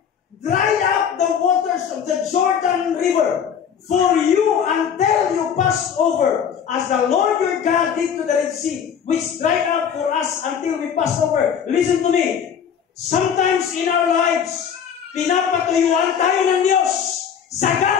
dried up the waters of the Jordan River for you until you pass over, as the Lord your God did to the Red Sea, which dried up for us until we pass over. Listen to me. Sometimes in our lives, pinapatuyuan tayo ng Diyos.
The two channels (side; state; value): right; quieter; 7.8 dB